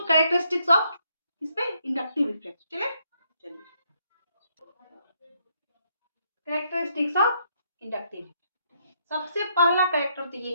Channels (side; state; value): both; inverted; correlation -0.73